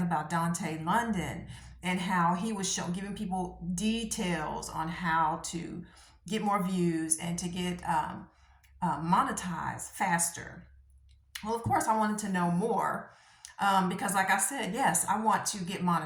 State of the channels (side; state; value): both; identical; correlation 1.00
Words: about Dante London and how he was giving people details on how to get more views and to get monetize faster. Well, of course, I wanted to know more because, like I said, yes, I want to get